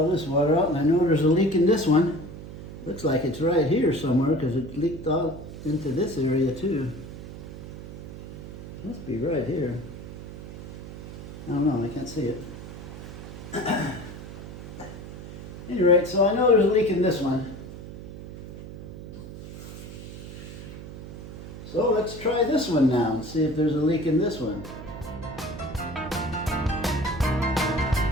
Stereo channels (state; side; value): noise; right; hum, 12 dB below the sound